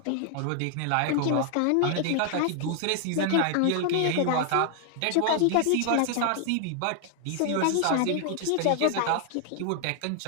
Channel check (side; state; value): both; different; correlation 0.00